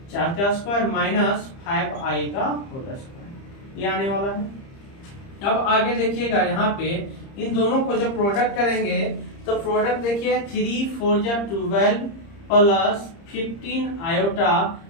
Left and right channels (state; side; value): late; right; 30 ms